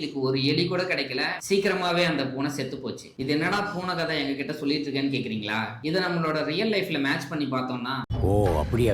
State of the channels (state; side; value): identical; both; correlation 1.00